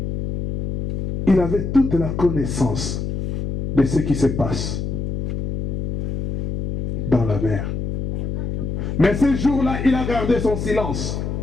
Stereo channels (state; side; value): noise; left; hum, 2 dB below the sound